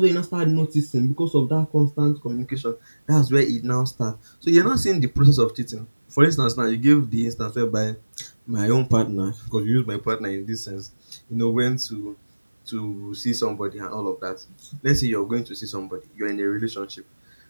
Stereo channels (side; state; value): both; inverted; correlation -1.00